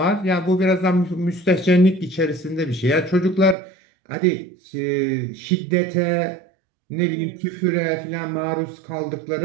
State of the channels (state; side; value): drops out; left; at 3.6 s